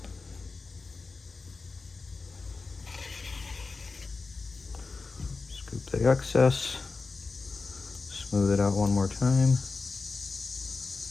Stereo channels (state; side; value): quieter; right; 4.1 dB